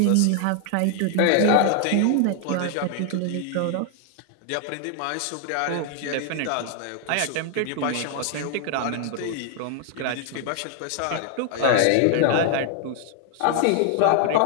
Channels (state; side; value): different; both; correlation 0.00